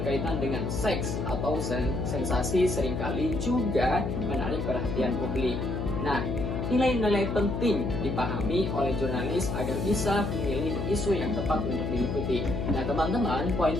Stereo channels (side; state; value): left; noise; hum, 2 dB below the sound